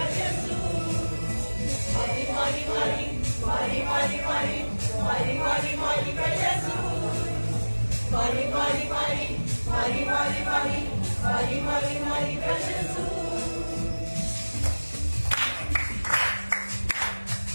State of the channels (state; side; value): inverted; both; correlation -1.00